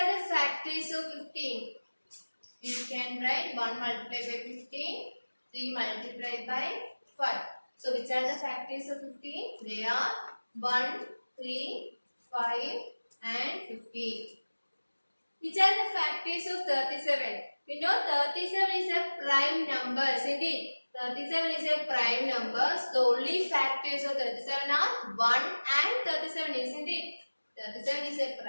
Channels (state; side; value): inverted; both; correlation -1.00